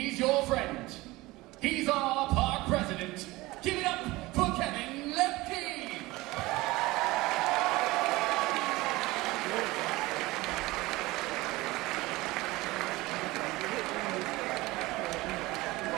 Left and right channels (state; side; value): quieter; left; 20.3 dB